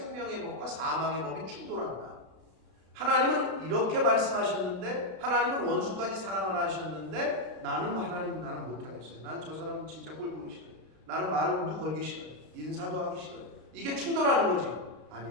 법과 사망의 법이 충돌한다. 하나님은 이렇게 말씀하셨는데, 하나님은 원수까지 사랑하라 하셨는데, 나는 못하겠어요. 난 저 사람 진짜 꼴 보기 싫어요. 나는 말도 걸기 싫어요. 인사도 하기 싫어요. 이게 충돌하는 거지.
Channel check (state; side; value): late; left; 32 ms